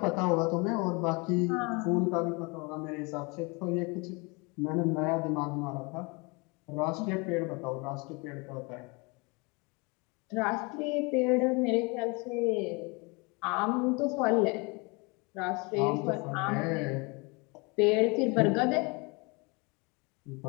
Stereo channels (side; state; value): right; quieter; 28.9 dB